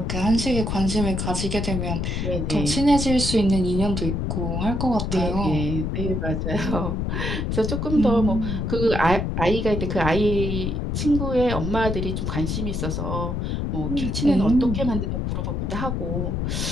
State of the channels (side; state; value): left; noise; rumble, 1 dB below the sound